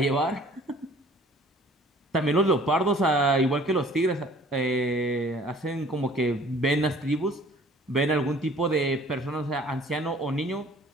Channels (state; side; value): normal; both; correlation 0.53